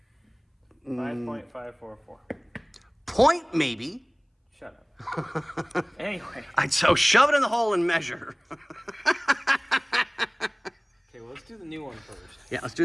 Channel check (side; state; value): both; identical; correlation 1.00